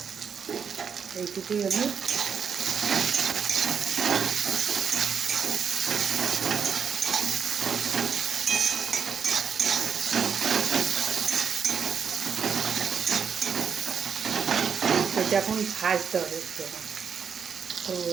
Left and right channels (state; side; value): quieter; left; 6.9 dB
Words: এইটুকুই আমি এটা এখন ভাজতে হবে একটু। তো